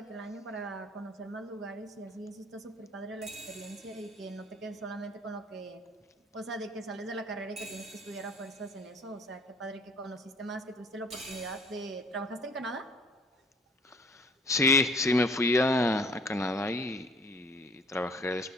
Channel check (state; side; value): normal; both; correlation 0.55